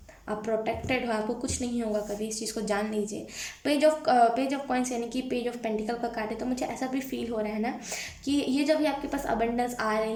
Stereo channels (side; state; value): both; identical; correlation 1.00